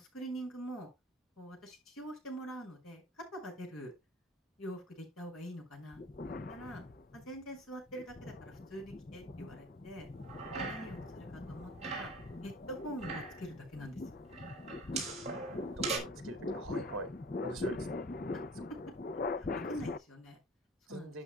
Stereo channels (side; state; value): both; normal; correlation 0.44